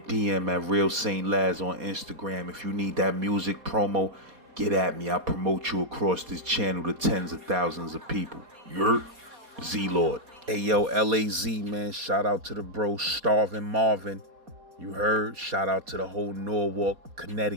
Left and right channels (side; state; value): left; late; 4.2 ms